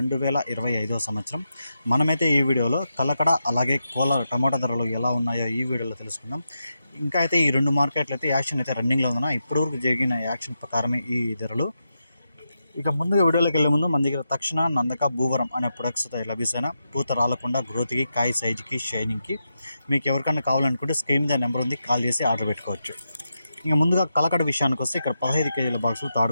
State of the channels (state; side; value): inverted; both; correlation -0.87